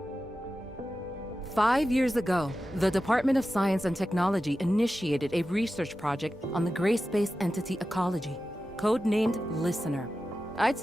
5 years ago, the Department of Science and Technology initiated a research project on the gray space entity ecology, codenamed Listener. I'd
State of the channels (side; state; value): both; normal; correlation 0.93